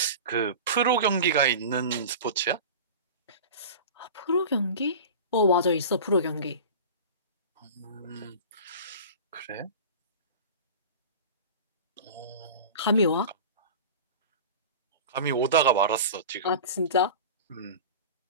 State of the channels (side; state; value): both; inverted; correlation -0.33